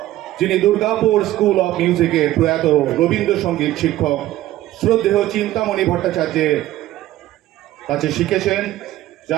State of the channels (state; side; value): quieter; left; 14.9 dB